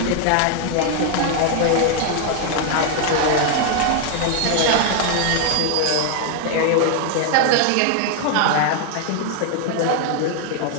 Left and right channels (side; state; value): both; different; correlation 0.00